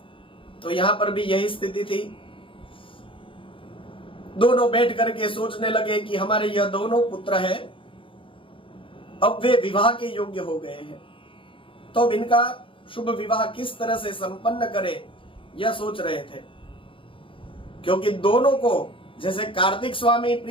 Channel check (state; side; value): late; right; 0.25 ms